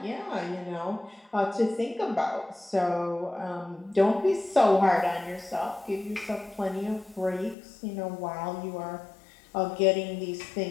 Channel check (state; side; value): drops out; right; at 7.6 s